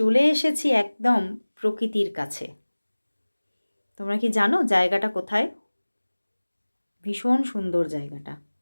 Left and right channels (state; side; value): inverted; both; correlation -1.00